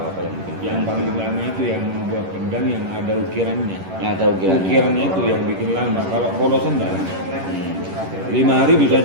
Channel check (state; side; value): late; left; 11 ms